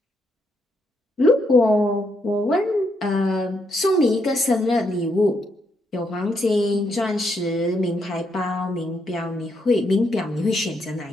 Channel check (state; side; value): normal; both; correlation 0.77